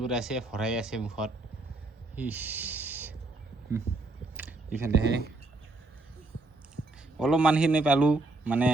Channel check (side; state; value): left; quieter; 3.1 dB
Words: কৰি আছে ভৰাই আছে মুখত ইফালেহে অলপমানখিনি পালোঁ মানে